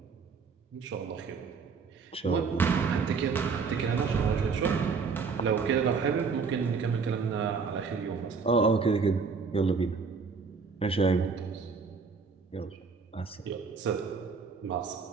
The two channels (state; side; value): quieter; left; 5.1 dB